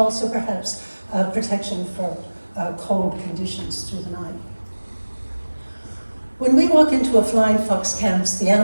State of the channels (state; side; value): inverted; both; correlation -1.00